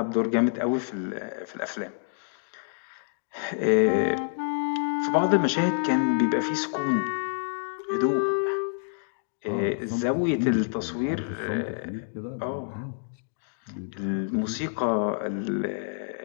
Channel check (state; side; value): silent; right; digital silence